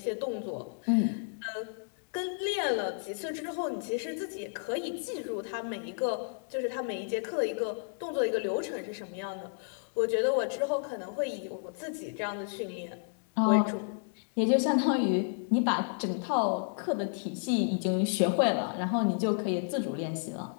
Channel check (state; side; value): silent; right; digital silence